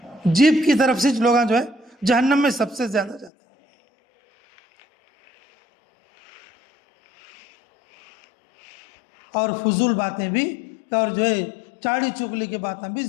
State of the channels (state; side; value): drops out; right; at 3.3 s